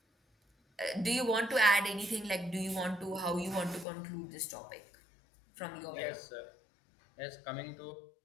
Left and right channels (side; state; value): right; drops out; at 3.9 s